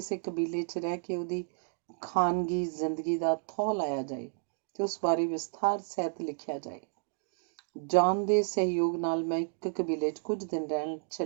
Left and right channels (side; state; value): left; silent; 57 dB below the other